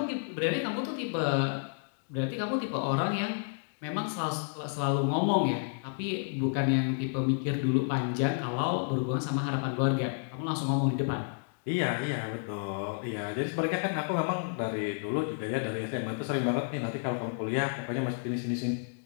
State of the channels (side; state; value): right; silent; digital silence